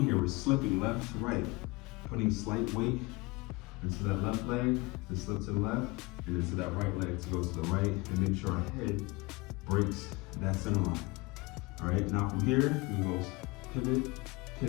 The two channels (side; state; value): right; quieter; 24.8 dB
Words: here. We're slipping left to right, putting slight weight into that left leg to slip to the left, and into that right leg to go to the right, and make sure our head breaks that center line. All right, now from here, we go pivot,